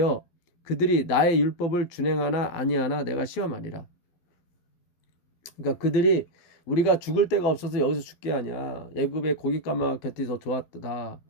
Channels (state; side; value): late; right; 12 ms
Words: 그들이 나의 율법을 준행하나 아니하나 내가 시험하리라. 그러니까 그들이 우리가 죽을 데가 없어서 여기서 죽게 하냐. 애굽의 고깃가마 곁이 더 좋았다.